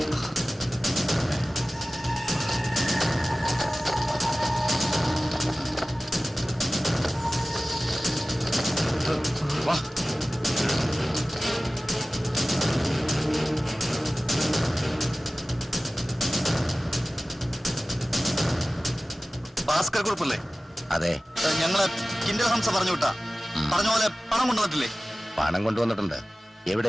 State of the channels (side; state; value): both; normal; correlation 0.97